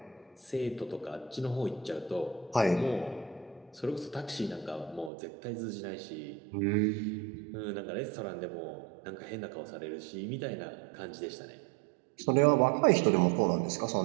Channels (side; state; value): left; drops out; at 5.1 s